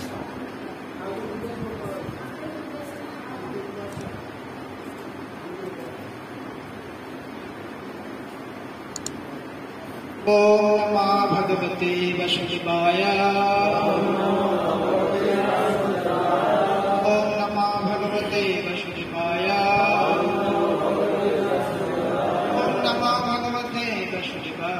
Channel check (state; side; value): identical; both; correlation 1.00